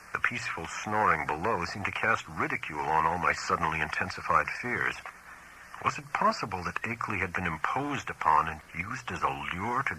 The peaceful snoring below seemed to cast ridicule on all my suddenly intensified fears. Was it possible that Akeley had been imposed upon and used as a lure to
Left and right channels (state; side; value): identical; both; correlation 1.00